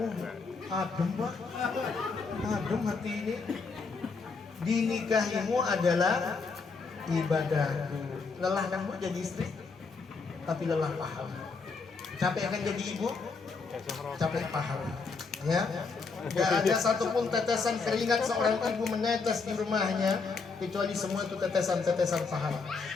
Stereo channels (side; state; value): right; quieter; 4.6 dB